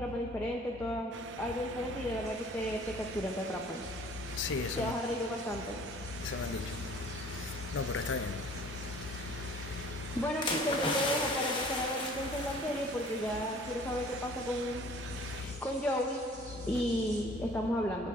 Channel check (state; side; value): normal; both; correlation 0.51